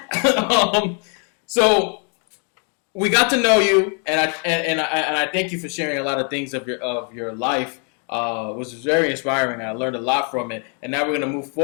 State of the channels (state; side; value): quieter; right; 40.0 dB